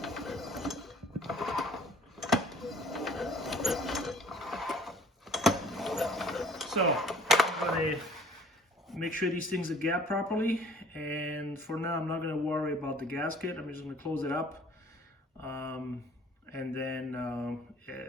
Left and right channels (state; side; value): normal; both; correlation 0.53